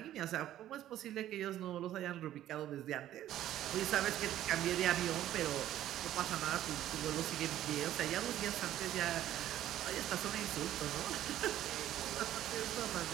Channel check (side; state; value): left; quieter; 12.7 dB